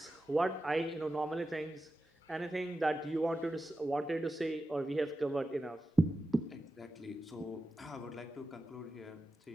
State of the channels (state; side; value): normal; both; correlation 0.92